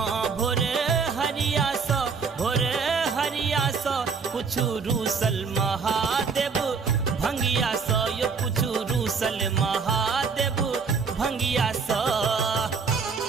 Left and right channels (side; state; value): left; quieter; 5.3 dB